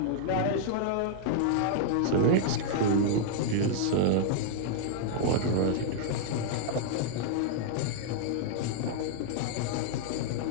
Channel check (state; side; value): different; both; correlation -0.01